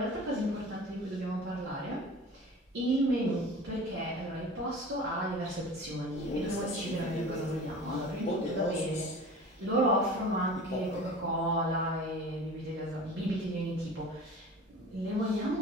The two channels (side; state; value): both; normal; correlation 0.39